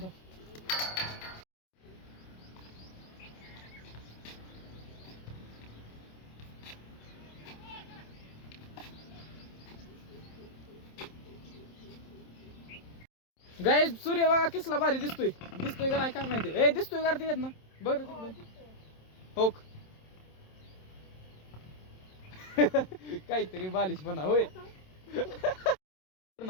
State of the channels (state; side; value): late; right; 27 ms